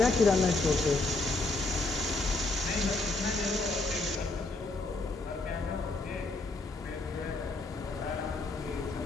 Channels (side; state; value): right; quieter; 3.2 dB